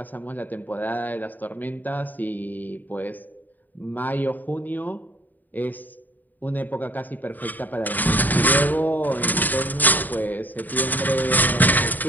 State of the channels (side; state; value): right; late; 0.085 ms